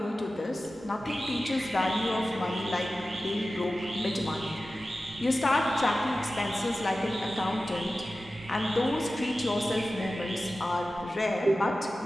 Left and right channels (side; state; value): both; normal; correlation 0.95